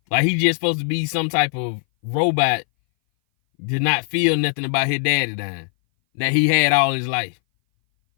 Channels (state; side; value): silent; right; 61 dB below the other